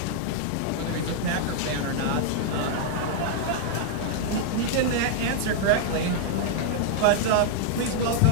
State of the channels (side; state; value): both; different; correlation -0.01